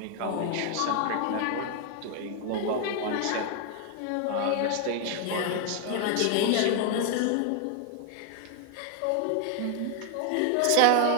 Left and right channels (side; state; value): both; different; correlation 0.00